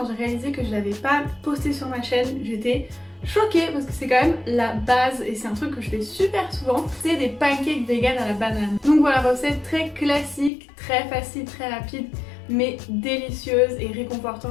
j'ai réalisé que je l'avais pas postée sur ma chaîne, j'étais choquée parce que c'est quand même la base et c'est un truc que je fais super souvent, c'est des pancakes vegan à la banane. Donc voilà, recette très classique, très facile, très rapide, mais délicieuse et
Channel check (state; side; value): drops out; right; at 10.5 s